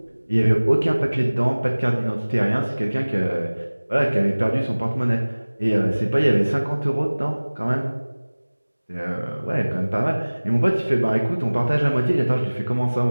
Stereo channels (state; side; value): inverted; both; correlation -1.00